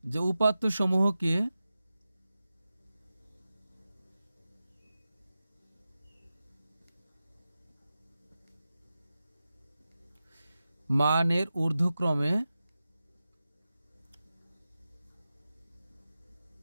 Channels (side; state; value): both; inverted; correlation -0.93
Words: যে উপাত্ত সমূহকে মানের ঊর্ধ্বক্রমে